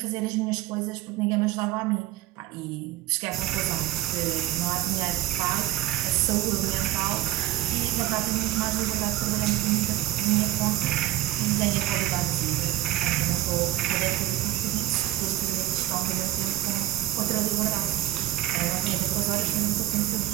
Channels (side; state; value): left; quieter; 15.3 dB